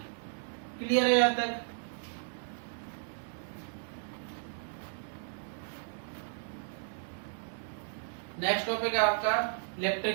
क्लियर है यहाँ तक? नेक्स्ट टॉपिक है आपका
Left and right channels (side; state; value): left; silent; 55 dB below the other